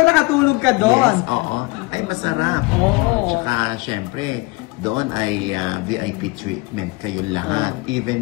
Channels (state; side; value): quieter; right; 24.0 dB